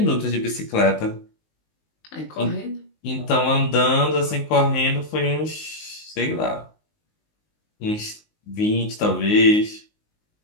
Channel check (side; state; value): right; late; 19 ms